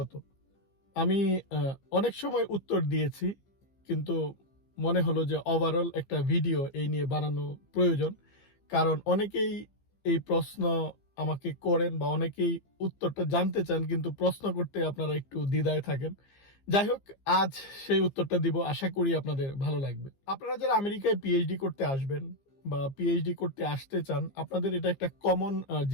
আমি অনেক সময় উত্তর দিয়েছি, কিন্তু মনে হলো যে ওভারঅল একটা ভিডিও এই নিয়ে বানানো প্রয়োজন। কারণ অনেকেই এই প্রশ্ন আমাকে করেন বা অনেকেই উত্তরটা জানতে চান, কিন্তু প্রশ্ন করতে আপনারা একটু দ্বিধায় থাকেন। যাই হোক, আজ সেই উত্তরটা দিব, আশা করি আপনাদের ভালো লাগবে। আপনারা যারা আমেরিকায় পিএইচডি করতে আসবেন বা পিএইচডি করতে আসতে চান, আপনাদের এটা একটা কমন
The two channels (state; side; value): late; right; 15 ms